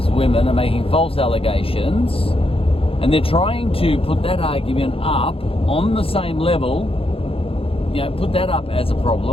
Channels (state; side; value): late; right; 0.27 ms